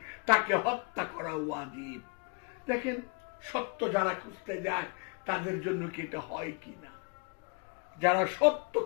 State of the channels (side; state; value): right; quieter; 31.5 dB